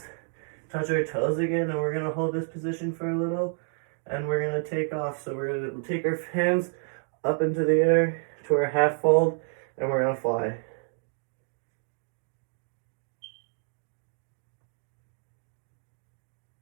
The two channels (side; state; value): left; silent; 56 dB below the other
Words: touch our toes again, and we're gonna hold this position for a little, and we're gonna take off. So we're gonna take our hands up into the air to our half fold, and we're gonna fly.